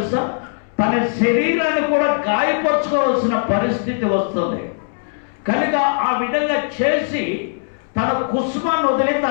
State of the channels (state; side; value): silent; right; 66 dB below the other